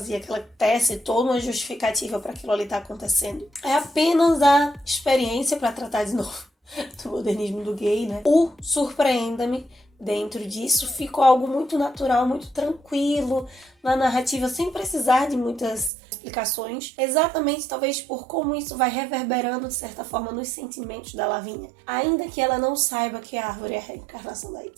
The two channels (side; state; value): left; drops out; at 15.9 s